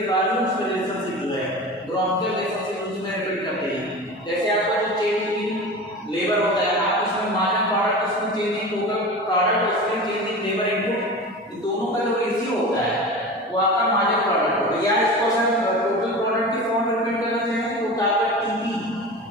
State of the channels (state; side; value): normal; both; correlation 0.32